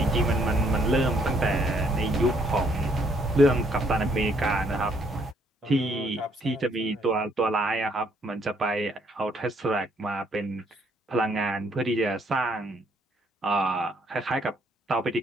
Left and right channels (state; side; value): normal; both; correlation 0.68